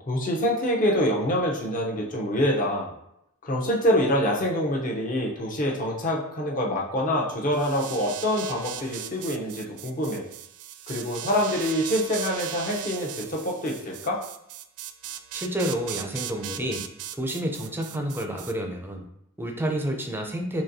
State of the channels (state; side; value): normal; both; correlation 0.29